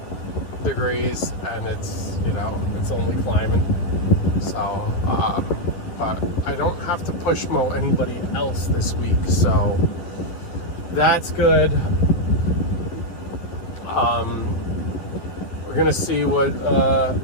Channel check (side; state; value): right; late; 11 ms